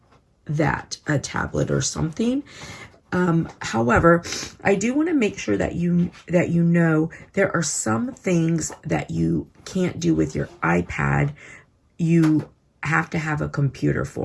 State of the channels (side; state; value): both; identical; correlation 1.00